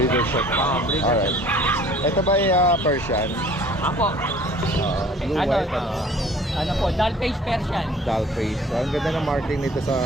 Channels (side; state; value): both; normal; correlation 0.51